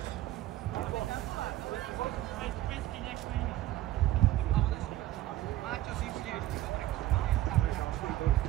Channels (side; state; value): left; quieter; 14.7 dB